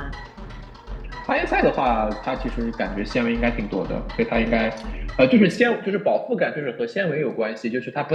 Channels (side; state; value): both; identical; correlation 1.00